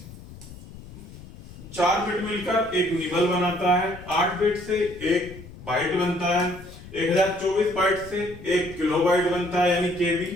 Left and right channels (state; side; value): noise; left; rumble, 16 dB below the sound